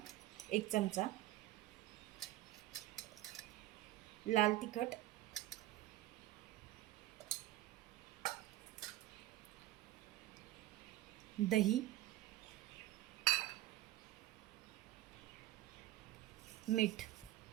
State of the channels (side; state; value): left; quieter; 15.4 dB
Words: 1 चमचा, लाल तिखट, दही, मीठ।